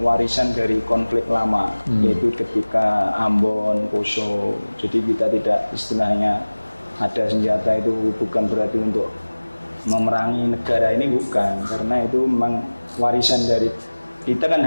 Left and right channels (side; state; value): both; inverted; correlation -1.00